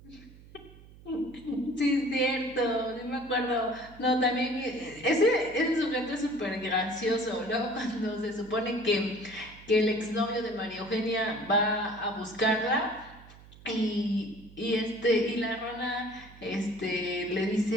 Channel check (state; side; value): noise; right; hum, 21 dB below the sound